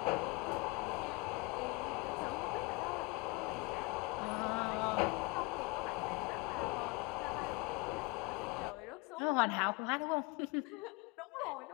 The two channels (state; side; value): quieter; right; 26.0 dB